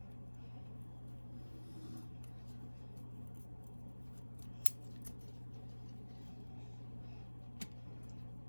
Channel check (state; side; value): inverted; both; correlation -1.00